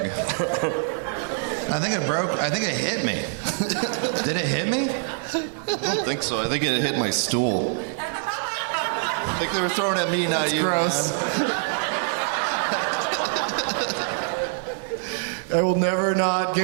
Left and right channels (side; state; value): left; silent; 62 dB below the other